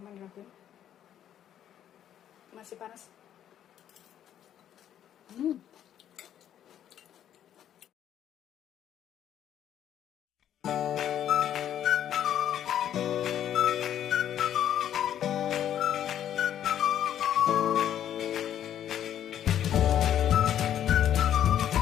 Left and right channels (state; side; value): quieter; right; 10.5 dB